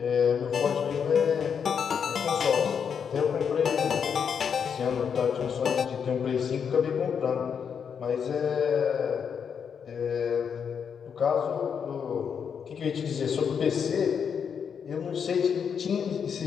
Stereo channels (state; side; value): quieter; right; 7.1 dB